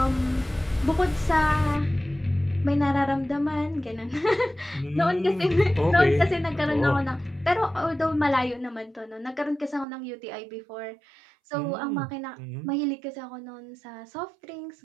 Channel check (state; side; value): drops out; left; at 9.9 s